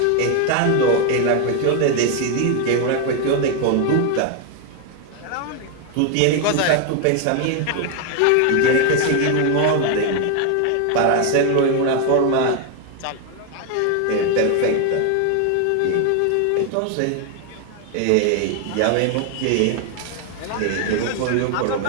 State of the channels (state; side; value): different; both; correlation 0.01